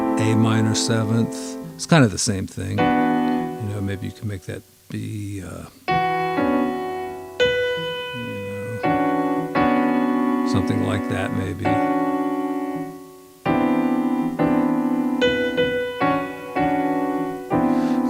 minor 7th. It's kind of the same thing. Maybe you can make that be, something like that maybe.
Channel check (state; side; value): identical; both; correlation 1.00